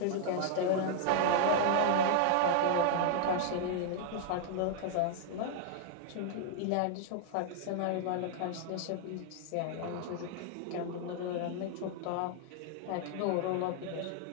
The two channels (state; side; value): different; both; correlation 0.00